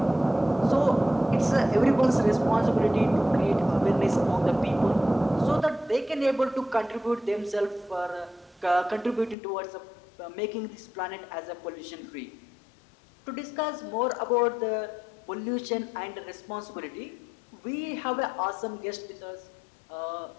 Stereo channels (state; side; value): drops out; right; at 9.3 s